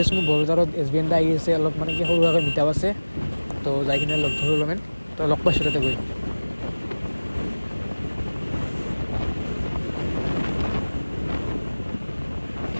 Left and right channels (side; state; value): both; inverted; correlation -1.00